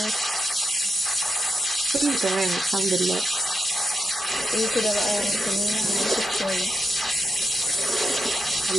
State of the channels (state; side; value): normal; both; correlation 0.85